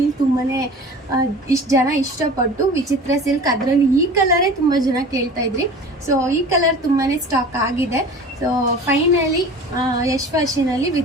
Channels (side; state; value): both; normal; correlation 0.40